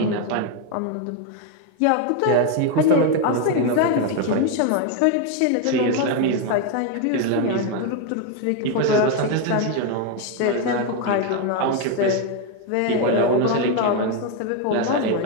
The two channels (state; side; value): different; both; correlation 0.01